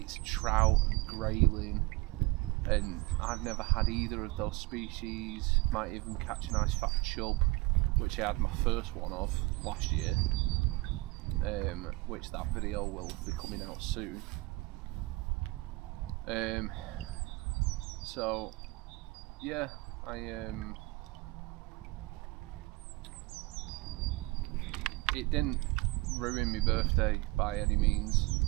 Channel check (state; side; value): quieter; left; 22.2 dB